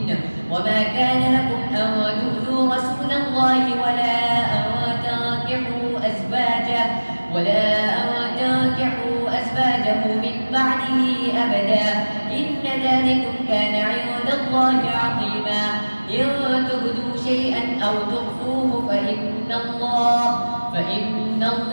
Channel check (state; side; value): inverted; both; correlation -1.00